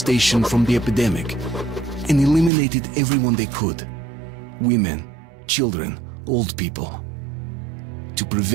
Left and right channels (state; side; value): drops out; left; at 2.5 s